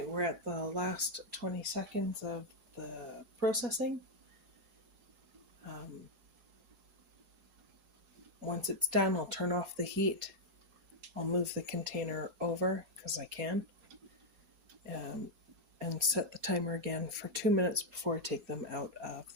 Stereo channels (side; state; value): left; late; 4.3 ms